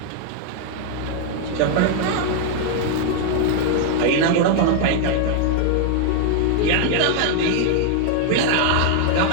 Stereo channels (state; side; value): different; both; correlation 0.00